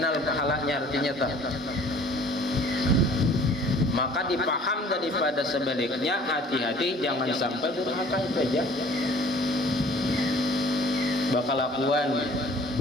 pahalanya artinya tak. Maka dipaham daripada sebaliknya, hati-hati jangan sampai durhaka itu aja. Bakal lakuan,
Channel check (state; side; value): normal; both; correlation 0.52